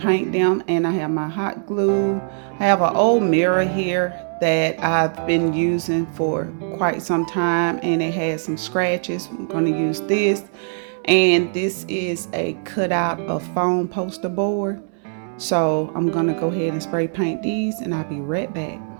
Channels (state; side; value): silent; left; digital silence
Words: them, and I have my hot glue. I have an old mirror here that I've been using for quite some time, and it has some scratches. I'm going to use this. And this is a cutout of foam poster board. So I'm gonna go ahead and spray paint these, and I'll be right back.